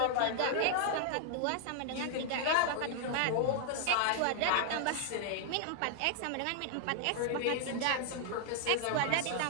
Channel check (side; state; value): both; different; correlation 0.00